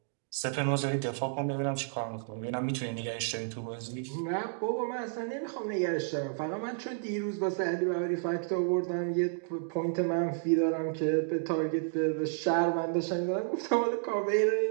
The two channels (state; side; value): silent; left; digital silence